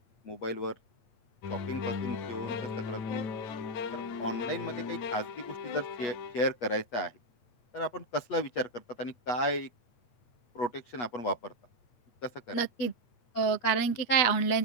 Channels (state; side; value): late; right; 8.3 ms